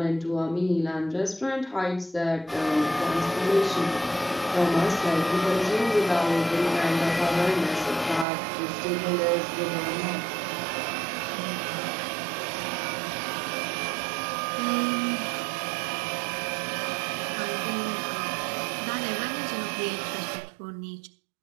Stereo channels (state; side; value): drops out; left; at 8.2 s